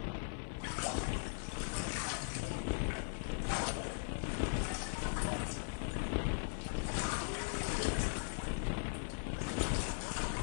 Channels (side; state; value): right; silent; 52 dB below the other